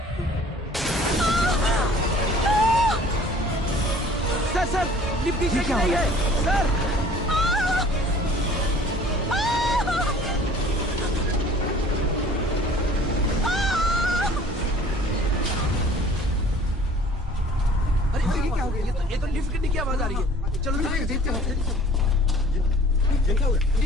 सर सर, लिफ्ट की शेक नहीं है सर। अरे ये क्या हो गया? ये तो लिफ्ट गिरने की आवाज आ रही है। चलो देखते हैं। ये क्या हो गया?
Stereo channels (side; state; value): both; normal; correlation 0.50